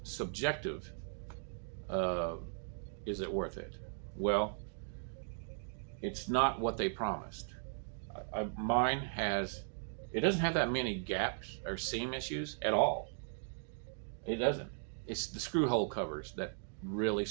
subjective. Is it worth it? Well, it's not what they promised. Mine has, it doesn't have that many gaps or seam issues at all. It doesn't. It's the screw hole covers that really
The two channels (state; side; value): silent; left; digital silence